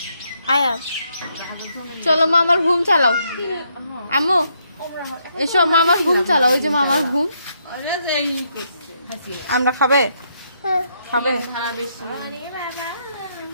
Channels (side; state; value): both; inverted; correlation -0.76